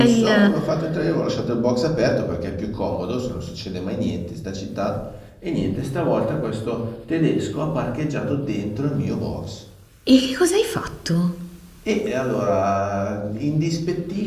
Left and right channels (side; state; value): both; identical; correlation 1.00